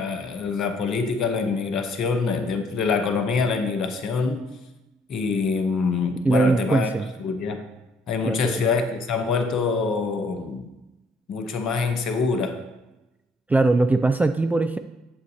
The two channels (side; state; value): both; normal; correlation 0.66